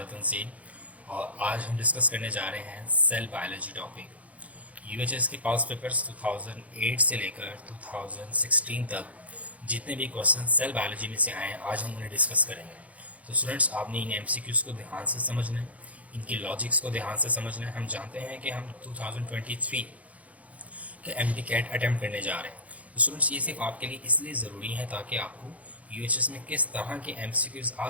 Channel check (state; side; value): late; left; 0.068 ms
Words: Tanzeel और आज हम discuss करने जा रहे हैं सेल बायोलॉजी टॉपिक। यूएचएस के पास पेपर्स 2008 से लेकर 2016 तक जितने भी क्वेश्चन सेल बायोलॉजी में से आए हैं आज हम उन्हें डिस्कस करेंगे। तो स्टूडेंट्स आपने इन एमसीक्यूज़ को ध्यान से समझना है, इनकी लॉजिक्स को ध्यान से समझना है। हम जानते हैं कि हम 2023 के एमडी कैट अटैम्प्ट करने जा रहे हैं। तो स्टूडेंट्स ये सिर्फ आपके लिए इसलिए ज़रूरी है ताकि आपको यूएचएस में किस तरह के एमसीक्यूज़ आ